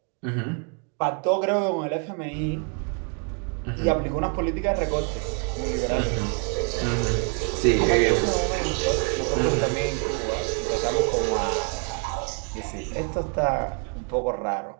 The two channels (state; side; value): quieter; left; 38.3 dB